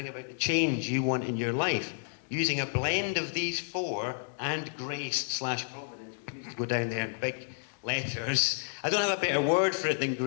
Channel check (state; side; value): silent; right; digital silence